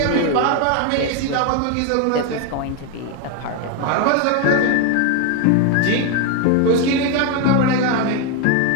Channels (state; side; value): different; both; correlation 0.02